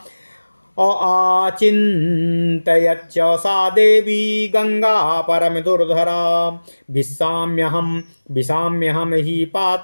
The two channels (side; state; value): both; inverted; correlation -1.00